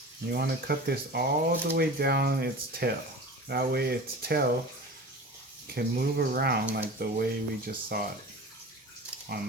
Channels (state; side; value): normal; both; correlation 0.35